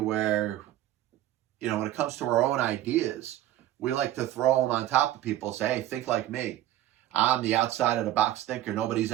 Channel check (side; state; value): left; quieter; 13.6 dB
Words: when it comes to our own ideas, we like to throw them on top of people and say, hey, think like me. I'm the outside of the box thinker. Nobody's